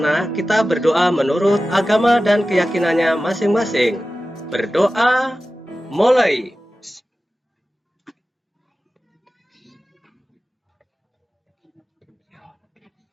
kita berdoa menurut agama dan keyakinannya masing-masing. Berdoa mulai.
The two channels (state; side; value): normal; both; correlation 0.95